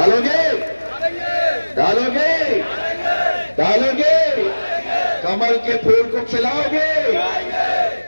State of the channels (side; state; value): both; inverted; correlation -1.00